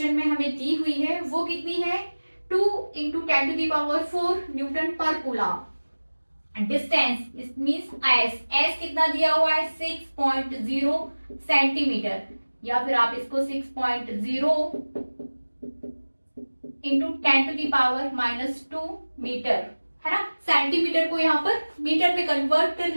में हमें दी हुई है वो कितनी है 2 × 10⁴ Newton per coulomb, distance it means S, S कितना दिया हुआ है 6.0 सेंटीमीटर, या फिर आप इसको 6.0 इंटू 10⁻⁻2 मीटर, है ना। सेंटीमीटर को यहाँ पर मीटर में कन्वर्ट कर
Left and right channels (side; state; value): both; inverted; correlation -1.00